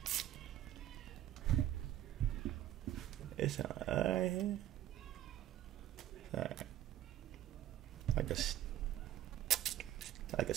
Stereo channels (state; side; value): quieter; left; 12.8 dB